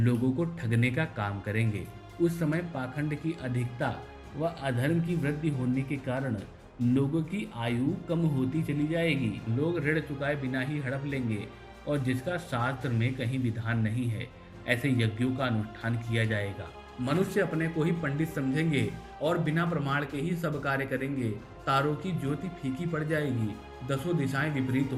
को ठगने का काम करेंगे। उस समय पाखंड की अधिकता व अधर्म की वृद्धि होने के कारण लोगों की आयु कम होती चली जाएगी। लोग ऋण चुकाए बिना ही हड़प लेंगे और जिसका शास्त्र में कहीं विधान नहीं है, ऐसे यज्ञों का अनुष्ठान किया जाएगा। मनुष्य अपने को ही पंडित समझेंगे और बिना प्रमाण के ही सब कार्य करेंगे। तारों की ज्योति फीकी पड़ जाएगी। दसों दिशाएं विपरीत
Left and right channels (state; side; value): identical; both; correlation 1.00